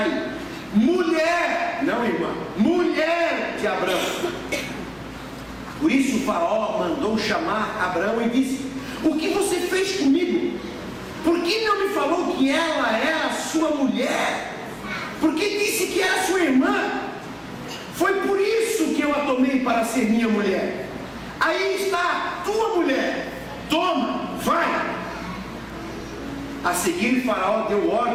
mulher, não irmã, mulher de Abraão. Por isso o Faraó mandou chamar Abraão e disse: o que você fez comigo? Por que não me falou que ela era sua mulher? Por que disse que era sua irmã? Foi por isso que eu a tomei para ser minha mulher. Aí está a tua mulher, toma, vai. A seguir Faraó deu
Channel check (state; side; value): identical; both; correlation 1.00